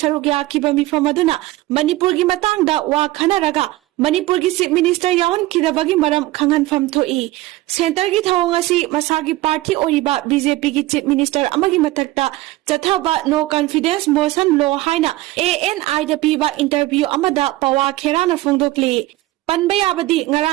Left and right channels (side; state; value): left; quieter; 17.9 dB